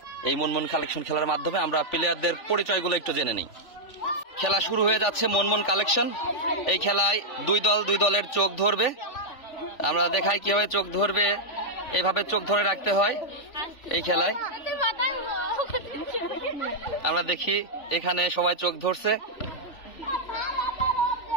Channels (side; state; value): right; late; 3.4 ms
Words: এই মনমন কালেকশন খেলার মাধ্যমে। আমরা প্লেয়ারদের পরিচয়গুলো একটু জেনে নিই। খেলা শুরু হয়ে যাচ্ছে মনমন কালেকশন। এই খেলায় দুই দলের চোখ ধরবে। আমরা দেখাই কিভাবে চোখ ধরবে। এইভাবে চোখ ধরে রাখতে হয় এই খেলায়। আমরা দেখি এখানে সবাই চোখ ধরছে।